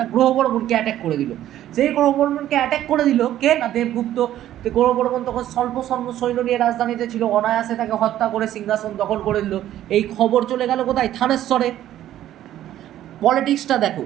গ্রহবর্মণকে অ্যাটাক করে দিল। সেই গ্রহবর্মণকে অ্যাটাক করে দিল কে? না দেবগুপ্ত। গ্রহবর্মণ তখন স্বল্প সৈন্য নিয়ে রাজধানীতে ছিল, অনায়াসে তাকে হত্যা করে সিংহাসন দখল করে দিল। এই খবর চলে গেল কোথায়? থানেশ্বরে। পলিটিক্সটা দেখো,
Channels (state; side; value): quieter; left; 12.5 dB